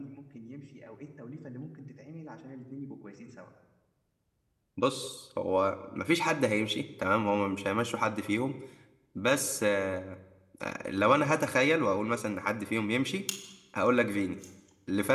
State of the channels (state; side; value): identical; both; correlation 1.00